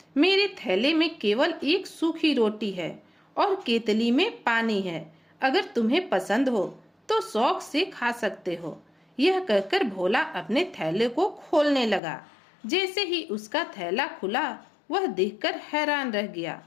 मेरे थैले में केवल एक सूखी रोटी है और केतली में पानी है। अगर तुम्हें पसंद हो तो शौक से खा सकते हो। यह कहकर भोला अपने थैले को खोलने लगा। जैसे ही उसका थैला खुला, वह देखकर हैरान रह गया।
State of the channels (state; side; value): drops out; right; at 12.0 s